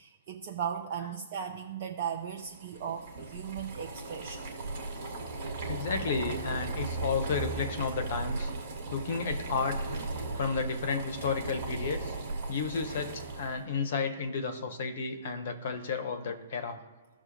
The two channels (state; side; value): inverted; both; correlation -0.52